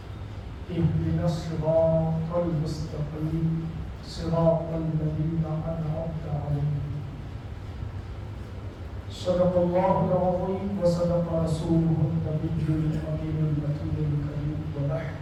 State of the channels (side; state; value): both; identical; correlation 1.00